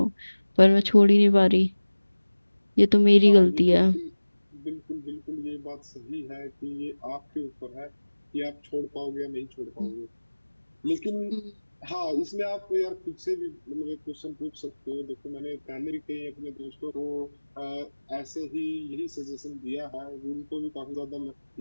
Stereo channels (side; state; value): both; inverted; correlation -1.00